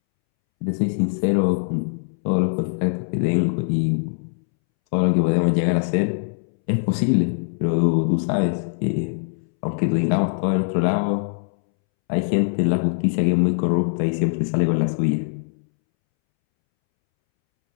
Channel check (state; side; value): silent; right; 64 dB below the other